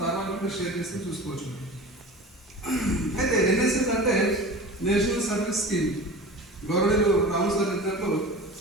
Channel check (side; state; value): both; normal; correlation 0.35